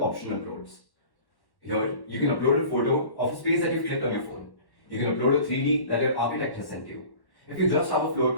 option uploads. Here, you can upload a photo of a space that you've clicked on your phone. You can upload a 3D that your architect has sent you. If you just have a floor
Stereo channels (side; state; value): right; late; 1.1 ms